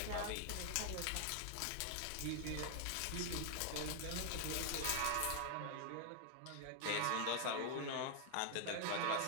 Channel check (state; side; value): different; both; correlation 0.00